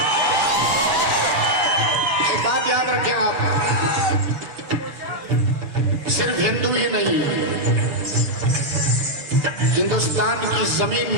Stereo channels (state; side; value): late; left; 7.0 ms